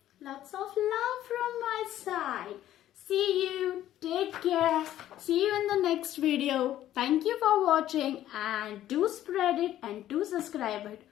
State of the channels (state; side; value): quieter; right; 12.7 dB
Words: lots of love from my side. See you. Take care. See you in the next video. Thank you for watching, and do spread it and do subscribe it.